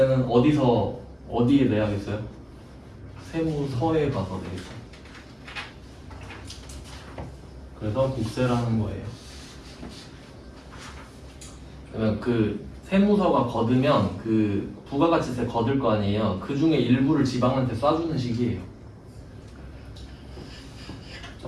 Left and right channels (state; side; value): identical; both; correlation 1.00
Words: 어디에 내야겠어요? 세무서에 가서 내겠죠. 그래서 국세라는 거예요. 그러면 그 세무서가 거두면 그 부가가치세 거둘 거 아니에요. 그 중에 일부를 지방한테 쏴주는 식이에요.